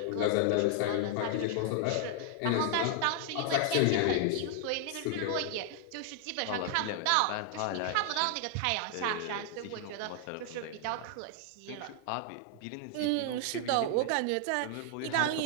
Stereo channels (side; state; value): both; different; correlation 0.00